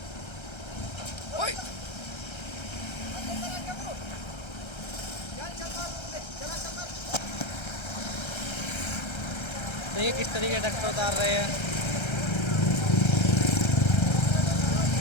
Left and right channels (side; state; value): right; late; 1.3 ms